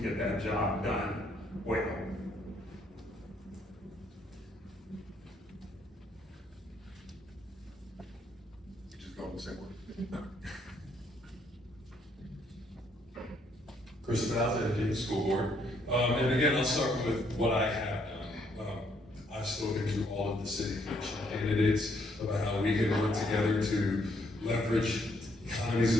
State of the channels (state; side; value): normal; both; correlation 0.71